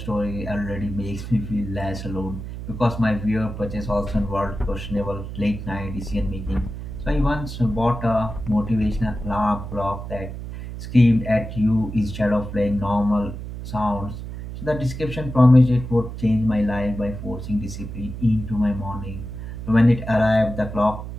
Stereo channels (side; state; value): right; noise; hum, 8 dB below the sound